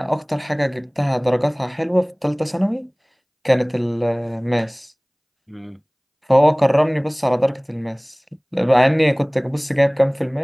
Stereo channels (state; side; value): identical; both; correlation 1.00